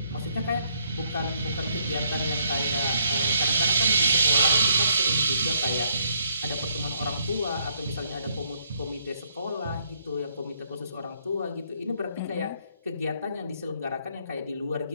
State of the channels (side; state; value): both; inverted; correlation -0.70